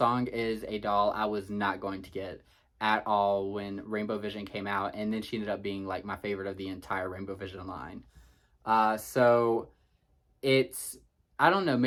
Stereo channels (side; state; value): both; identical; correlation 1.00